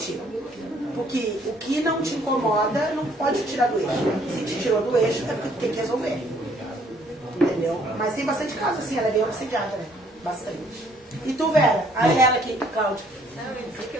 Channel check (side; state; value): both; normal; correlation 0.63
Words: ti. Porque o que não te incomoda não pode te tirar do eixo. Se te tirou do eixo, é porque tu tem que resolver. Entendeu? Mas tem bastante casos assim, ela é bem obsediada, né? Bastante. E tu, Vera? A ela aqui, Cláudia. Não, eu disse que eu